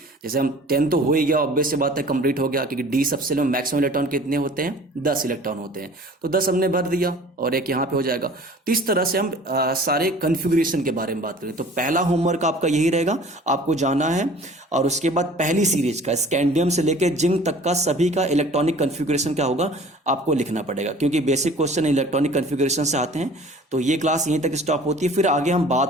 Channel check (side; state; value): both; normal; correlation 0.47